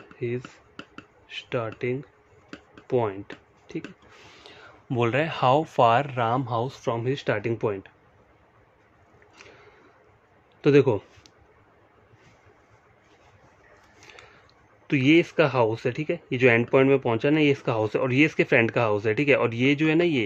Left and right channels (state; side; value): identical; both; correlation 1.00